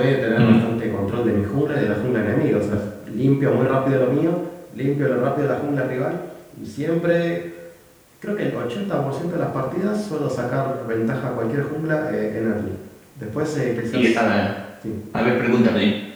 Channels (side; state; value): both; identical; correlation 1.00